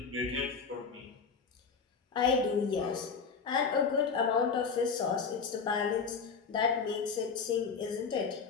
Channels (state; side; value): quieter; right; 5.5 dB